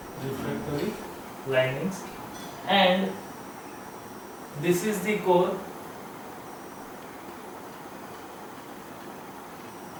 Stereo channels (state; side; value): identical; both; correlation 1.00